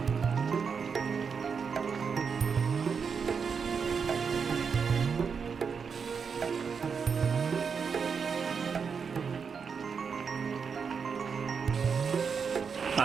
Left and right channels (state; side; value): quieter; left; 6.0 dB